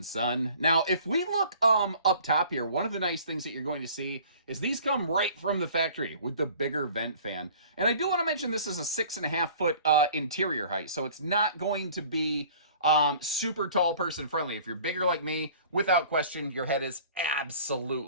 son. Now, if we look up top here, one of the nice things that you're going to see is these come right from the factory with the bigger vent fan. And I do want to mention this is a 6.5 foot interior height, so it's not going to be super tall person friendly. If you're bigger like me, without question, your head is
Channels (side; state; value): both; inverted; correlation -0.49